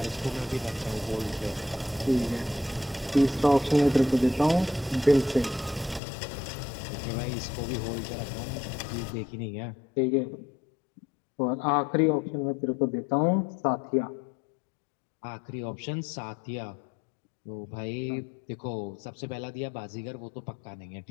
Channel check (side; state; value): right; drops out; at 6.0 s